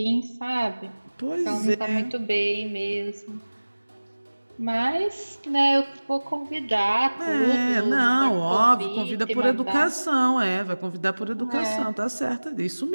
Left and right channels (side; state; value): both; inverted; correlation -1.00